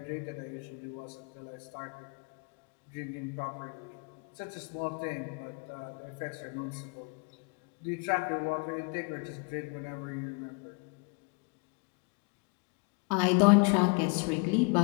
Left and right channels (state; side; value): quieter; right; 34.7 dB